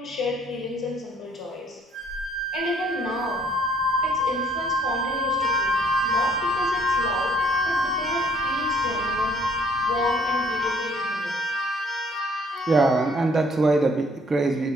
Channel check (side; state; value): both; normal; correlation 0.62